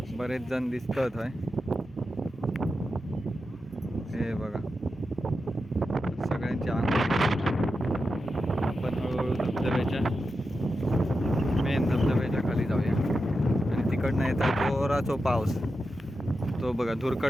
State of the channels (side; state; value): both; normal; correlation 0.89